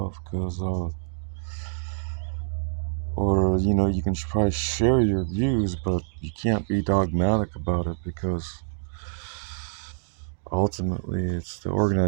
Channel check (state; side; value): silent; left; digital silence